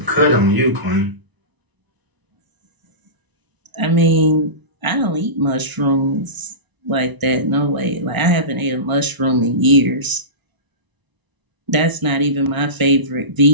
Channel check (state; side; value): late; left; 1.0 ms